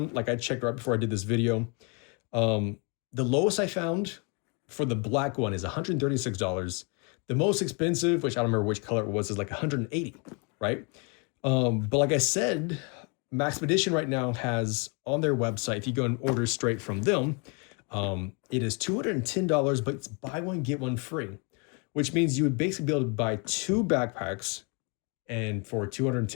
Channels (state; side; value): quieter; right; 33.3 dB